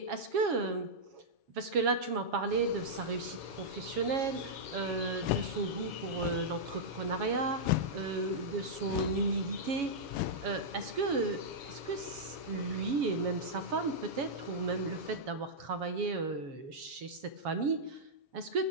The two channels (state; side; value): late; left; 7.2 ms